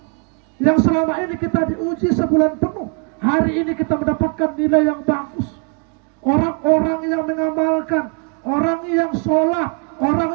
Yang selama ini kita diuji sebulan penuh, hari ini kita mendapatkan nilai yang bagus. Orang-orang yang mengamalkan, orang yang sholat,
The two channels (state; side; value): quieter; left; 36.9 dB